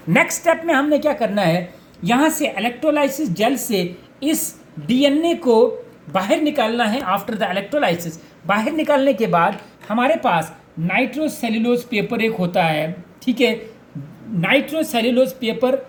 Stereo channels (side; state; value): both; identical; correlation 1.00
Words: नेक्स्ट स्टेप में हमने क्या करना है, यहाँ से इलेक्ट्रोलाइसिस जेल से इस डीएनए को बाहर निकालना है। आफ्टर द इलेक्ट्रोलाइसिस बाहर निकालने के बाद हमारे पास नाइट्रोसेल्यूलोज पेपर एक होता है, ठीक है। नाइट्रोसेल्यूलोज पेपर